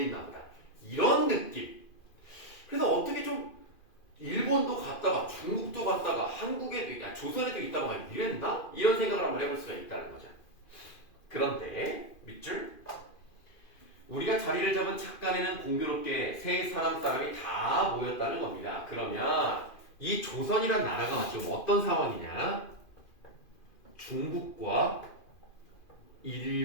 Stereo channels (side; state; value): right; late; 2.5 ms